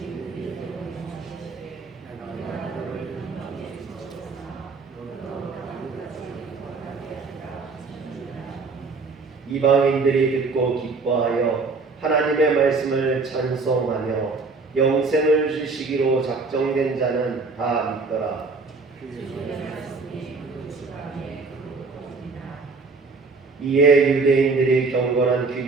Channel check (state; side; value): quieter; left; 4.1 dB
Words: 이방인들이 듣고 기뻐하여 하나님의 말씀을 찬송하며 영생을 주시기로 작정된 자는 다 믿더라. 이에 유대인들이 경건한